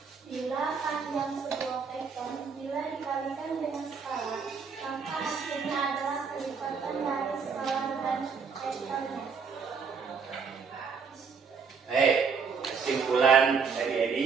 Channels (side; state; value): left; quieter; 5.7 dB